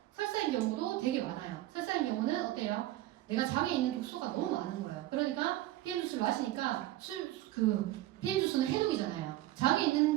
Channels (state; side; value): quieter; left; 15.6 dB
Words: 경우도 되게 많아요. 설사인 경우는 어때요? 내가 장에 있는 독소가 너무 많은 거예요. 그러니까 PM 주스를 마시니까 PM 주스는 해독이잖아요. 장에